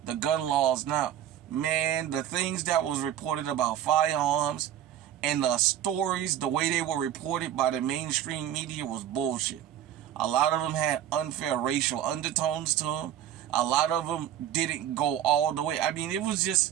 the gun laws now, man, the things that was reported about firearms and the stories, the way they were reported by the mainstream media was bullshit. A lot of them had unfair racial undertones to them. A lot of them didn't go all the way. I mean, it was just,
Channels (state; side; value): quieter; left; 11.0 dB